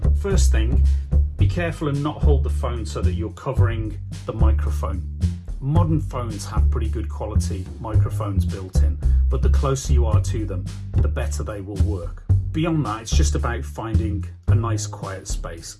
first thing, be careful and not hold the phone so that you're covering the microphone. Modern phones have pretty good quality microphones built in, but the closer you are to them, the better they will work. Beyond that, it's just about finding a nice quiet space.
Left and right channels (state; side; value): identical; both; correlation 1.00